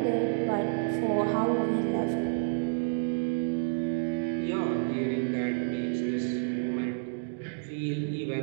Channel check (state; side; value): silent; left; digital silence